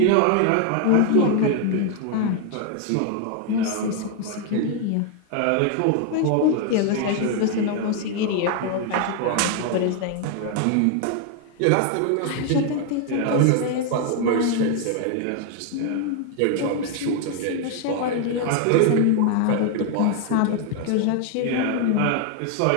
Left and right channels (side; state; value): both; different; correlation 0.01